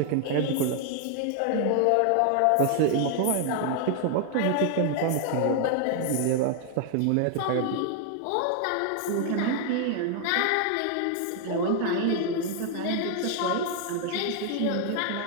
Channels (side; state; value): both; different; correlation 0.00